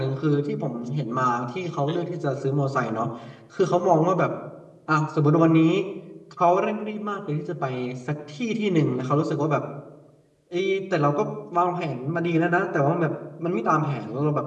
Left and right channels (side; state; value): both; identical; correlation 1.00